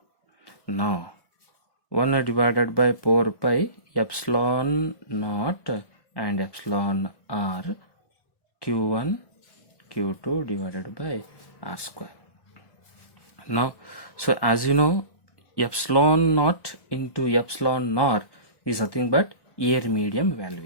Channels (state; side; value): late; right; 1.1 ms